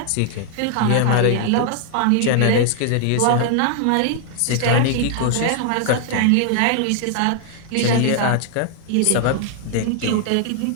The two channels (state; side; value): different; both; correlation 0.00